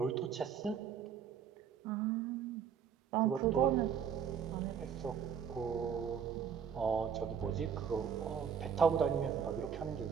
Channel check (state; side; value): quieter; left; 7.6 dB